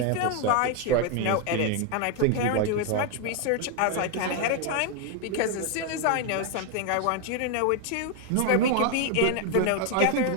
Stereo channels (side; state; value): both; different; correlation 0.01